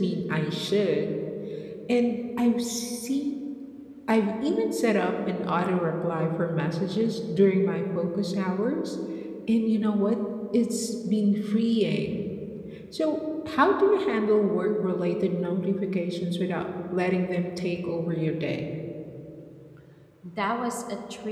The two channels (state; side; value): identical; both; correlation 1.00